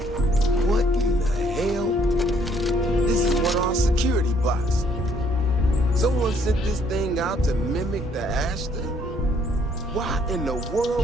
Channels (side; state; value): both; normal; correlation 0.65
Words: What in the hell? This is one of our security bots. Someone sent this thing out to mimic the Ashta? Why in the